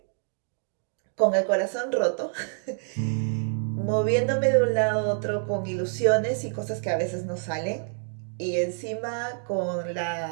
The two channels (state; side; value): silent; left; 60 dB below the other